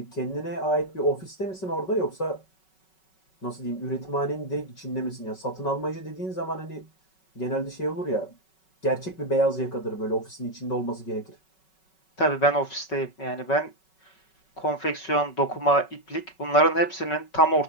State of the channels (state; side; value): late; right; 5.3 ms